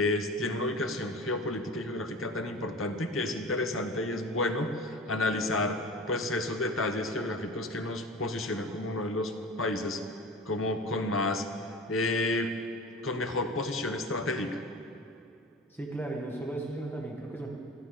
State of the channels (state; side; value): normal; both; correlation 0.35